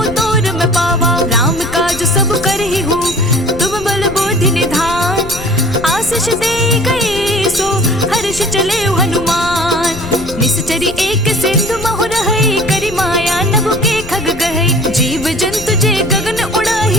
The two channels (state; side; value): noise; left; rumble, 12 dB below the sound